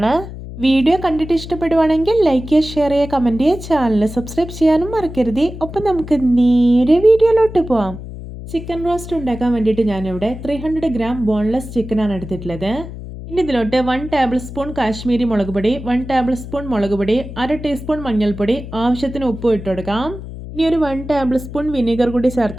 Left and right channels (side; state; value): left; noise; hum, 11 dB below the sound